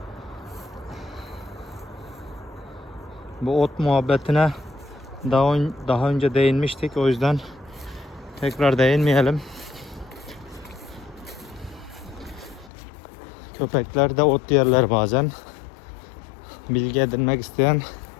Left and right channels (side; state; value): right; drops out; at 12.7 s